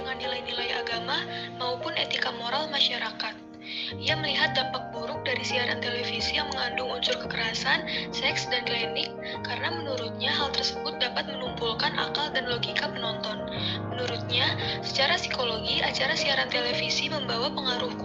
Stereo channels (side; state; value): both; identical; correlation 1.00